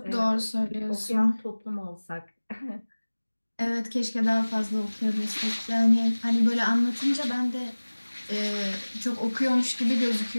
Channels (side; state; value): both; inverted; correlation -1.00